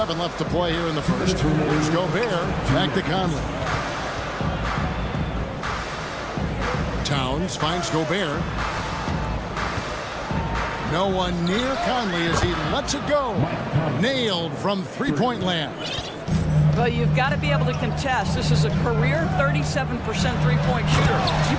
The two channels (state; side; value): identical; both; correlation 1.00